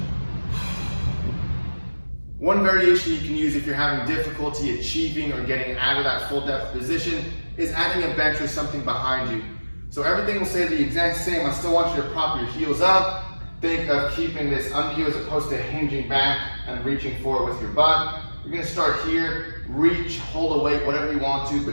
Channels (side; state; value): both; inverted; correlation -1.00